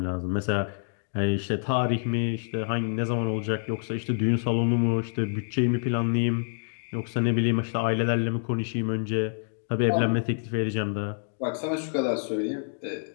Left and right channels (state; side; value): silent; right; digital silence